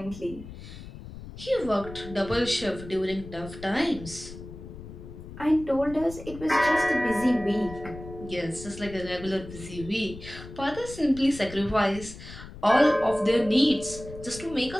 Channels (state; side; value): noise; left; rumble, 14 dB below the sound